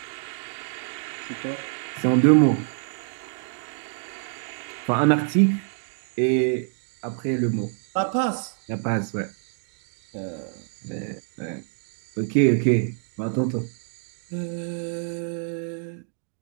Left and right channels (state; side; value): silent; left; 60 dB below the other